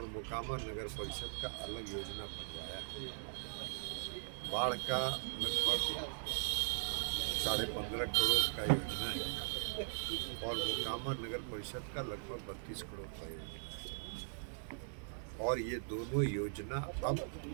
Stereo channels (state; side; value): silent; left; digital silence